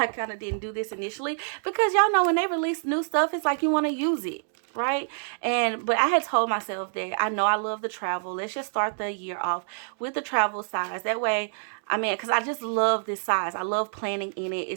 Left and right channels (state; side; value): silent; left; digital silence